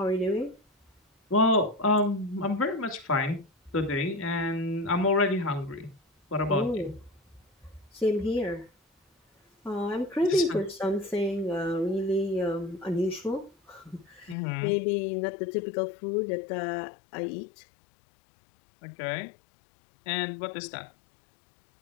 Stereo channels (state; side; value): drops out; right; at 14.4 s